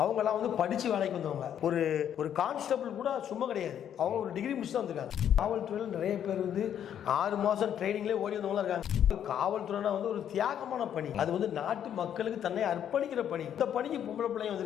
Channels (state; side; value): quieter; right; 9.6 dB